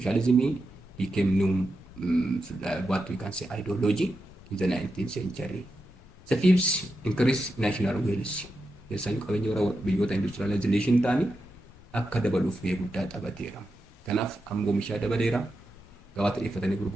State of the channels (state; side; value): normal; both; correlation 0.88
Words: became new, what we can say, ideology in the 19th century. The fifth, increased national wealth. Keessaayyuu qabeenya warra biyyoota industrialization ta'anii akka dabaluuf gahee guddaa taphateera. Kanaaf amma oomishaa dabaleera. Gabaatti dhiyeeffatanii